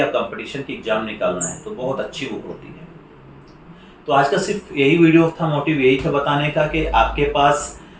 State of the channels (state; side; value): identical; both; correlation 1.00